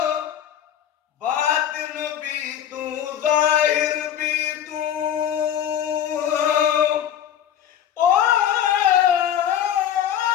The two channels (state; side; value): quieter; right; 10.1 dB